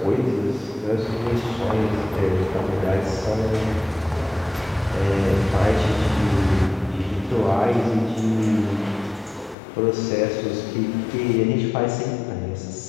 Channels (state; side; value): drops out; right; at 9.6 s